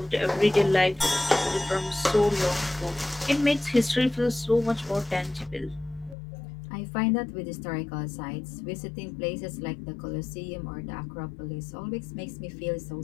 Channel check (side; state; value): right; drops out; at 6.2 s